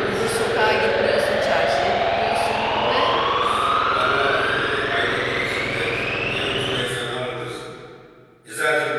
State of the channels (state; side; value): identical; both; correlation 1.00